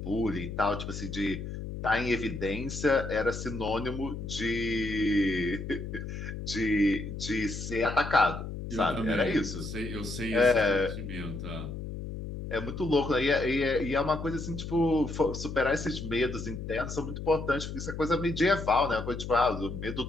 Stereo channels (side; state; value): left; noise; hum, 7 dB below the sound